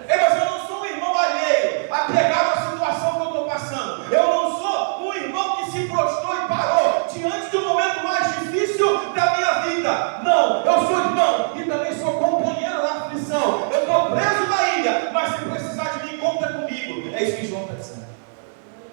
Mas eu não sou um irmão alheio, apegado à situação que eu estou passando. Eu não sou um irmão que se prostrou e parou diante do momento mais difícil da minha vida. Não, eu sou irmão e também sou companheiro na aflição. Eu estou preso na ilha, mas se precisar de mim, conta comigo. É isso que João está dizendo.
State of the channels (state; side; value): silent; left; 60 dB below the other